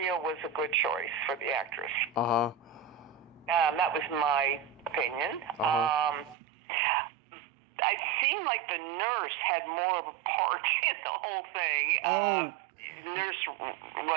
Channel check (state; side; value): drops out; left; at 6.4 s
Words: was a good choice for the actress. Uh-huh. That was my opinion. Uh-huh. I seemed like the nurse had more of a part in the whole thing. Oh. Nurse,